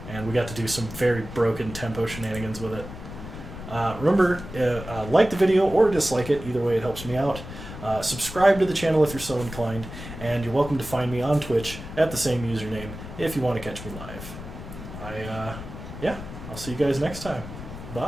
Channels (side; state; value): left; noise; rumble, 11 dB below the sound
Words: And we got to do some very broken tempo shenanigans with it. Remember, like the video or dislike it, either way it helps me out. Subscribe to the channel if you're so inclined, and you're welcome to find me on Twitch at the same username if you want to catch me live. Yeah, I'll see you guys next time.